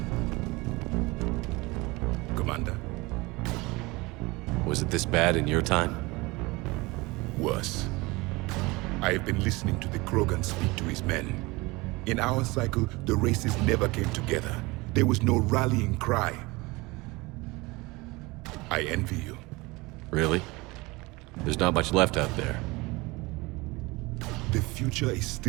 Commander. Was it this bad in your time? Worse. I have been listening to the Krogan speak to his men. In our cycle, the races never came together. There was no rallying cry. I envy you. Really? There's not much left out there. The future is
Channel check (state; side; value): quieter; left; 23.2 dB